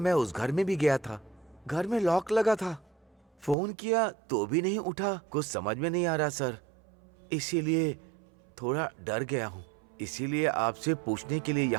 उस घर में भी गया था, घर में लॉक लगा था, फोन किया तो भी नहीं उठा। कुछ समझ में नहीं आ रहा सर, इसीलिए थोड़ा डर गया हूँ, इसीलिए आपसे पूछने के लिए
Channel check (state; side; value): drops out; left; at 3.6 s